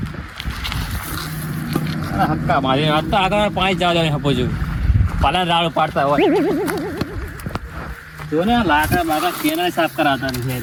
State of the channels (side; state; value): both; identical; correlation 1.00